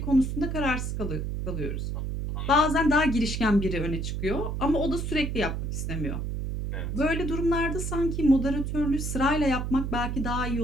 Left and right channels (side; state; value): right; noise; hum, 3 dB below the sound